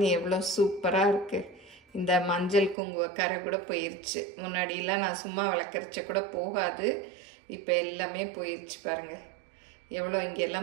எவ்வளோ சூப்பராக இருக்குது. இந்த மஞ்சள் குங்கும கரை கூட போயிடுச்சு. முன்னாடியெல்லாம் நான் சும்மா விளக்கரிச்ச கூட போகாது, இப்போ எல்லாமே போயிடுச்சு. பாருங்கள் எவ்வளோ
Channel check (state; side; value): drops out; left; at 2.8 s